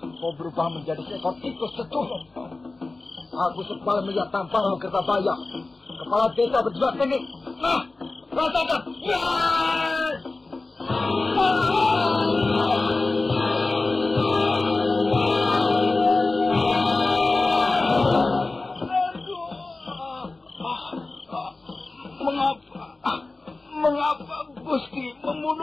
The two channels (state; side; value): quieter; right; 3.3 dB